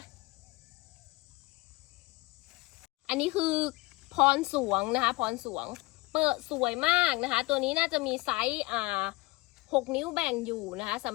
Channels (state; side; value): quieter; right; 22.5 dB